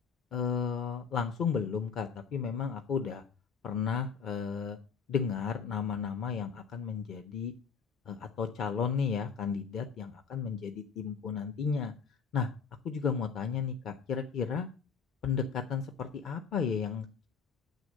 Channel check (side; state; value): right; quieter; 6.1 dB